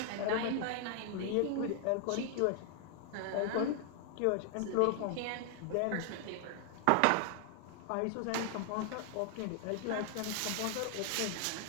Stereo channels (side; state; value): both; different; correlation 0.00